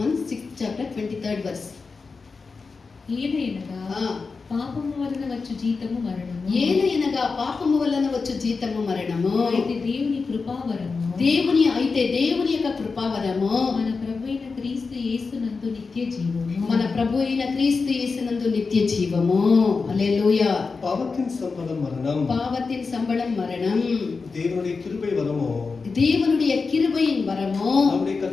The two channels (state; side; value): quieter; right; 4.5 dB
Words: 6th chapter 23rd verse. ఏలయనగా పాపము వలన వచ్చు జీతము మరణము. ఏలయనగా పాపము వలన వచ్చు జీతము మరణము. అయితే దేవుని కృపావరము. అయితే దేవుని యొక్క కృపావరము మన ప్రభువైన క్రీస్తు యేసునందు నిత్య జీవము. మన ప్రభు అయిన క్రీస్తు యేసునందు నిత్య జీవము. హల్లెలూయా. பாவத்தின் சம்பளம் மரணம். பாவத்தின் சம்பளம் மரணம். தேவனுடைய கிருபை வரமோ. தேவனுடைய கிருபையின் வரமோ. நம்முடைய